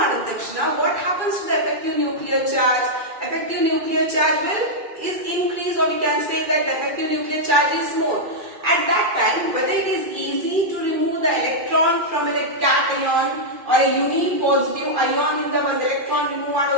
ತಕ್ಷಣ what happens to the effective nuclear charge? Effective nuclear charge is increased, or we can say that the effective nuclear charge is more. At that time, whether it is easy to remove the electron from a cation or a unipositive ion in the one electron remove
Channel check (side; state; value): left; late; 2.3 ms